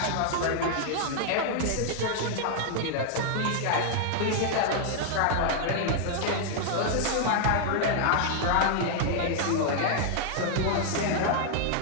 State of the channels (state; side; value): different; both; correlation -0.01